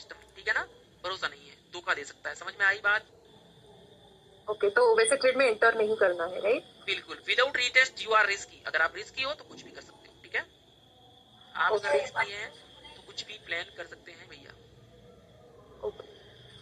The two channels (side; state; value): both; identical; correlation 1.00